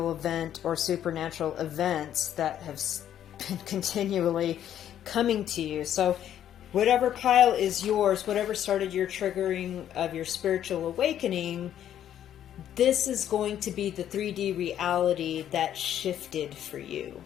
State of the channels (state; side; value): quieter; right; 10.6 dB